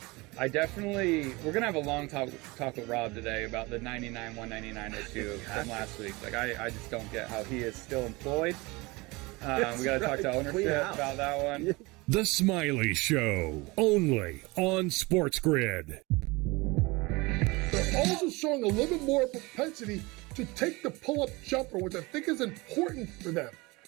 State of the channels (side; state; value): left; quieter; 23.8 dB